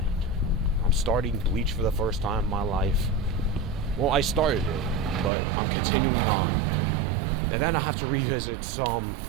I'm starting Bleach for the first time in my life. Well, I started it, but I'm continuing on. And then I have to revisit some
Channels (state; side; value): drops out; left; at 5.3 s